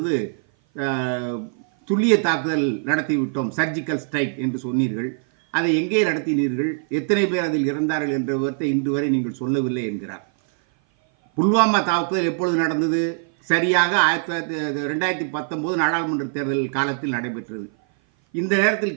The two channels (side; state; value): left; silent; 56 dB below the other